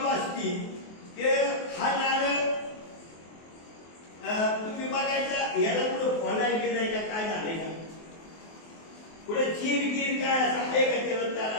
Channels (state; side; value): late; right; 24 ms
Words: असती की हा नारळ तुम्ही बघायचा, ह्याला कुठं फोडायला गेलाय का, काय झालंय का, कुठे चीर गिर काय असं आहे का, त्याला